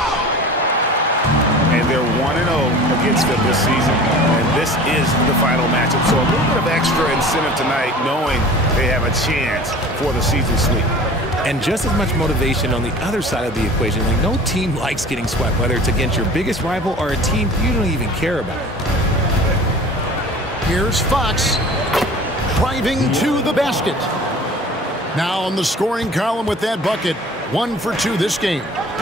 And they're 1-0 against them this season. And this is the final matchup. So a little bit of extra incentive tonight, knowing they have a chance for the season sweep. And just as much motivation on the other side of the equation. Like, no team likes getting swept, whether it's against your biggest rival or a team you don't even care about. Here's Fox driving to the basket. Now on the scoring column with that bucket. 1 for 2 this game.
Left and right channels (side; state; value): both; normal; correlation 0.42